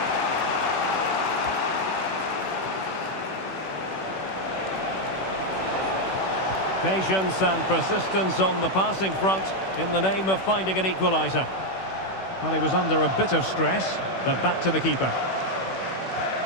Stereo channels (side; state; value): right; late; 16 ms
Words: Patience and persistence on the passing front in the name of finding an equaliser. Well, he was under a bit of stress, but back to the keeper.